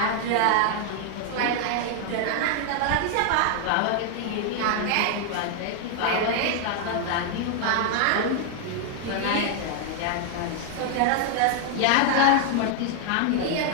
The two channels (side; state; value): both; different; correlation 0.00